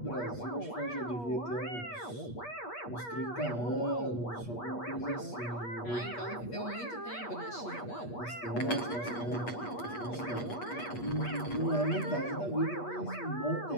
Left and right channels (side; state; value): right; late; 8.4 ms